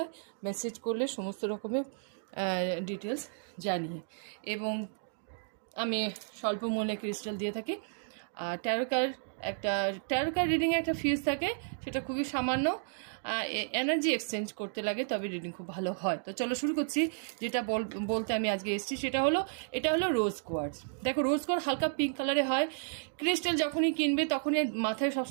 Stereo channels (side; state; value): left; silent; digital silence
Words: মেসেজ করলে সমস্ত রকমের ডিটেলস জানিয়ে, এবং আমি স্বল্প মূল্যে ক্রিস্টাল দিয়ে থাকি। আর ট্যারো কার্ড রিডিংয়ে একটা ফিজ থাকে, সেটা খুবই সামান্য। এনার্জি এক্সচেঞ্জ করতে লাগে, তবে রিডিং খুব ভালো হয়। তো চলো শুরু করছি। যেটা বলতে আমি আজকে এসেছি এটা হলো রোজ কোয়ার্টজ। দেখো, রোজ কোয়ার্টজ হালকা পিঙ্ক কালারে হয়। ক্রিস্টাল যখনই কিনবে তখনই মাথায়